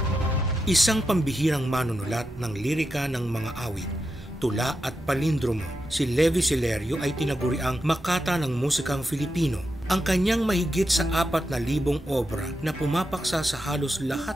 Isang pambihirang manunulat ng lirika ng mga awit, tula at palindromo, si Levi Celerio ay tinaguriang makata ng musikang Filipino. Ang kanyang mahigit sa 4,000 obra na pumapaksa sa halos lahat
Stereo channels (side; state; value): both; normal; correlation 0.87